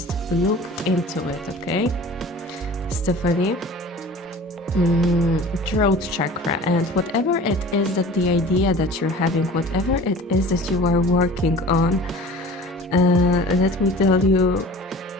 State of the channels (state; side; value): normal; both; correlation 0.42